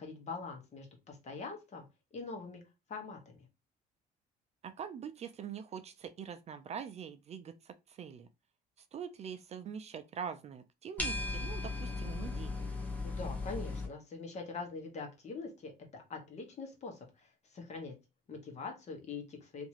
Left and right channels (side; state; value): both; normal; correlation 0.38